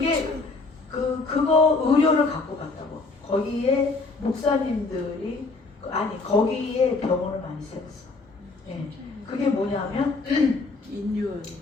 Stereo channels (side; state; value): right; quieter; 3.7 dB